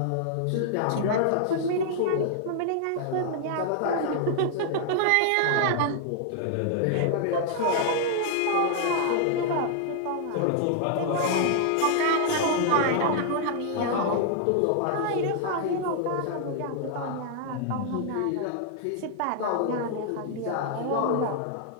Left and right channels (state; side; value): different; both; correlation -0.01